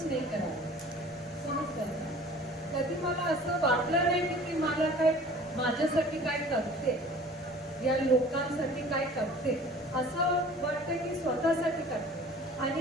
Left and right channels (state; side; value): normal; both; correlation 0.46